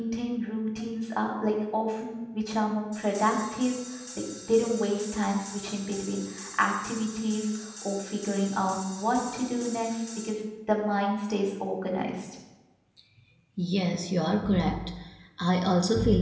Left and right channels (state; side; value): identical; both; correlation 1.00